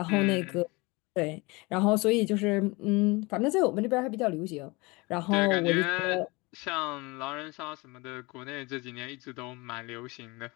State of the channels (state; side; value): quieter; right; 25.2 dB